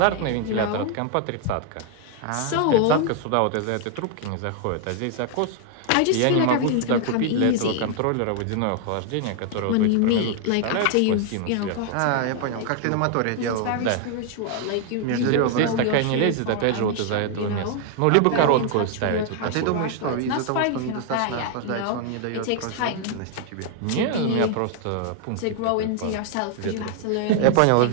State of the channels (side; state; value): both; different; correlation 0.00